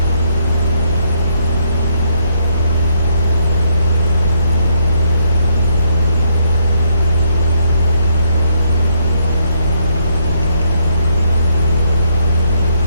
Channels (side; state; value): both; inverted; correlation -0.73